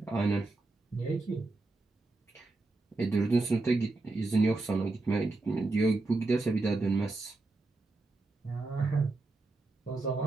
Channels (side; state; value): left; quieter; 3.3 dB